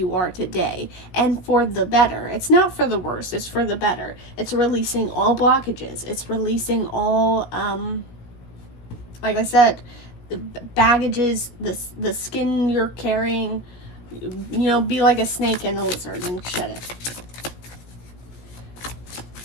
are today, and for the better. It's not for the worse, it's for the better. It's releasing all blockages. It's releasing all, like I said, the baggages, the skin you're carrying. You know, be like a snake and a lizard and shed it.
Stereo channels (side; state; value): right; late; 17 ms